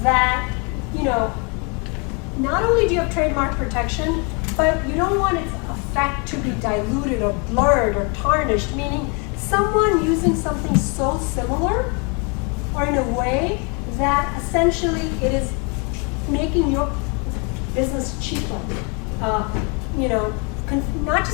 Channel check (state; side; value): quieter; right; 32.8 dB